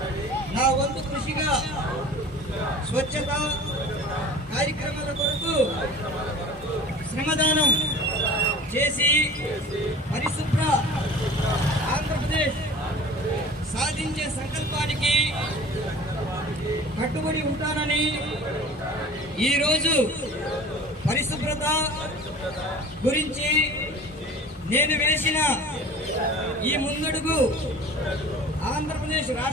నా వంతు కృషిగా స్వచ్ఛత కార్యక్రమాల కొరకు శ్రమదానం చేసి పరిశుభ్ర ఆంధ్రప్రదేశ్ సాధించే సంకల్పానికి కట్టుబడి ఉంటానని, ఈరోజు పరిశుభ్రత గురించి నేను వేసిన ఈ ముందడుగు ఆంధ్రప్రదేశ్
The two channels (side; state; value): both; normal; correlation 0.42